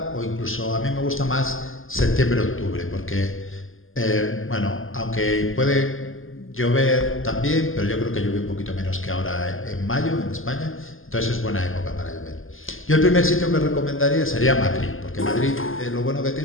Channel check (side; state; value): right; late; 0.59 ms